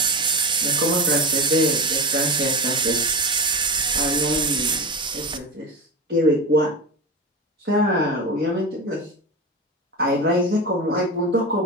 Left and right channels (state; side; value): normal; both; correlation 0.24